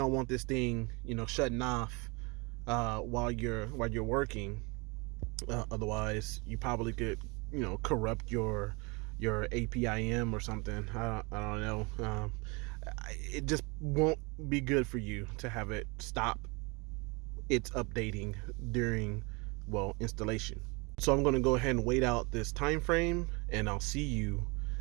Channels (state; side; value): quieter; left; 28.4 dB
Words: want this thing, shutting off while you're working. Otherwise, you probably could, corrupt your APIM or something. I don't know. It just won't be good for you to have it stop its updating during, installation. So I'm going to go ahead and wait out this time frame, and I'll see you